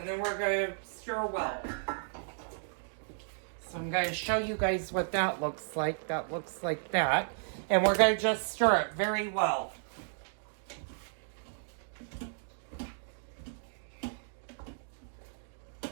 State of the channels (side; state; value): left; silent; digital silence